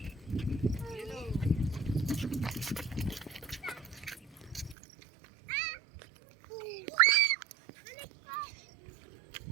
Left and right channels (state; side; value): drops out; left; at 4.8 s